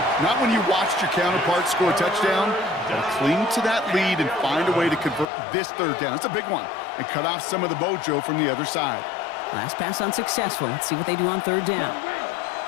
Not when you watched your counterpart score a touchdown. Got to cling to that lead and find a way to convert this third down. It's a big one. And cut off some of the mojo from the other side. Last pass unsuccessful. Let's see what they do on third down.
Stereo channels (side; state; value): right; drops out; at 5.2 s